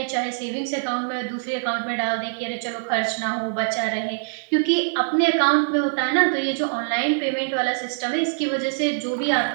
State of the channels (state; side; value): silent; left; digital silence